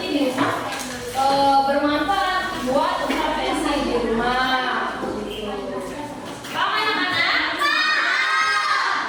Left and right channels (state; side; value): identical; both; correlation 1.00